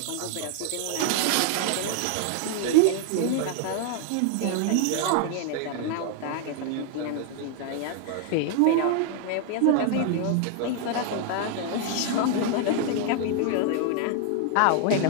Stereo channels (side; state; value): both; different; correlation 0.00